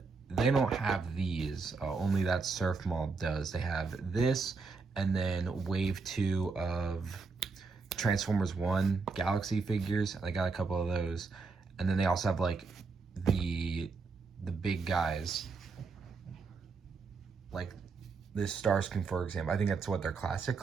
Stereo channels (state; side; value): quieter; left; 4.6 dB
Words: they don't have these. Only that surf mall does. They have this, and then wave 2 of Transformers 1 Galaxy figures. I got a couple of those, and then they also have like the big guys, like this Starscream, for example. I think that's what their classic